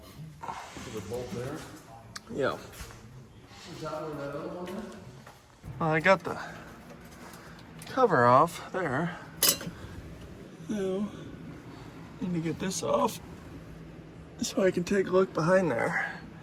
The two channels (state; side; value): identical; both; correlation 1.00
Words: Is it bolt there? Yeah. Is that where that other one is? Well, I got the cover off there. Now, need to get this off so I can take a look behind there.